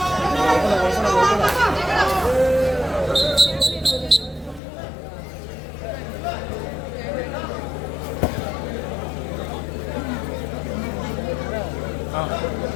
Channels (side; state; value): right; drops out; at 4.6 s